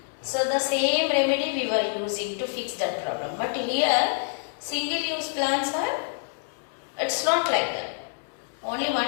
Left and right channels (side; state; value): right; silent; 60 dB below the other